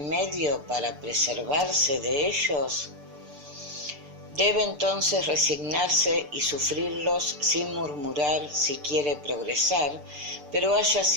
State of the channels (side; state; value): left; late; 6.8 ms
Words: para preservarse de ellos? Debe entonces resignarse y sufrirlos sin murmurar si quiere progresar, pero haya